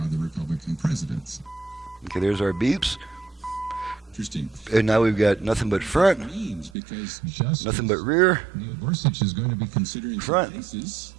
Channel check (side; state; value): left; drops out; at 6.8 s